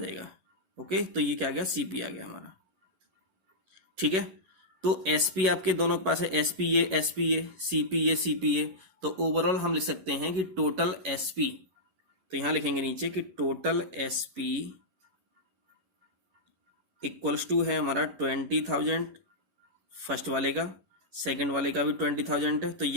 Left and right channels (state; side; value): late; left; 11 ms